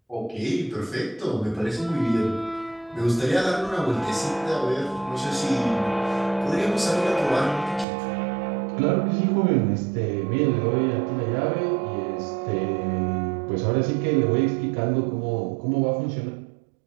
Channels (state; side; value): drops out; left; at 7.9 s